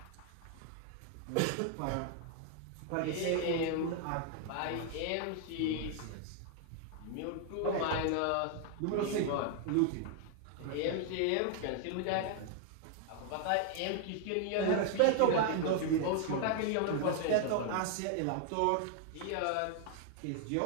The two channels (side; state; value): both; different; correlation 0.00